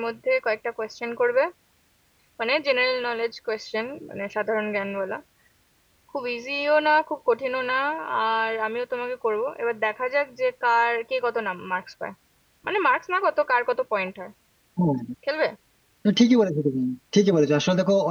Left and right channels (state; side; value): identical; both; correlation 1.00